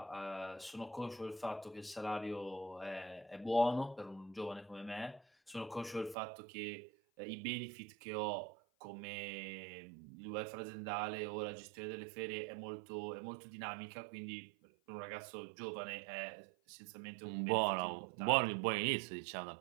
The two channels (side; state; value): left; drops out; at 6.2 s